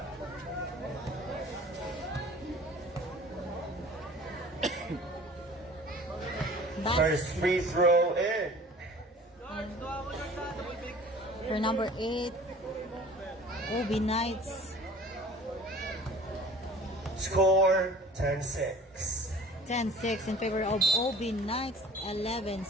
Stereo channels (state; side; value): normal; both; correlation 0.45